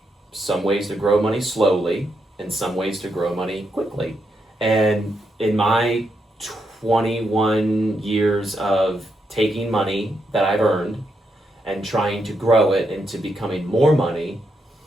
some ways to grow money slowly and some ways to grow money quickly. And in my 21 years of taking money that I've earned and trying to grow it into becoming more money,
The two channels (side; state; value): both; normal; correlation 0.81